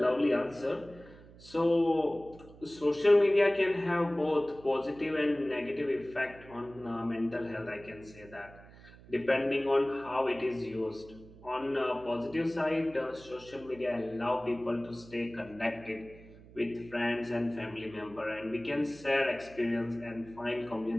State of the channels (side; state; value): right; noise; hum, 21 dB below the sound